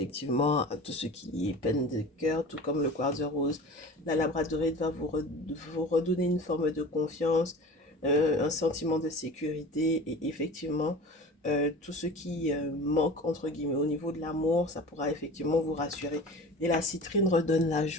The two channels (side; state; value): both; normal; correlation 0.37